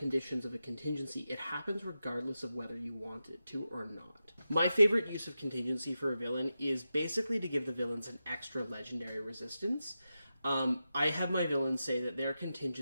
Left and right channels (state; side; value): inverted; both; correlation -0.90